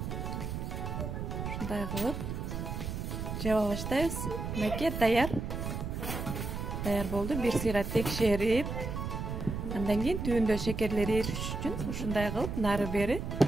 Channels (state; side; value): noise; right; rumble, 4 dB below the sound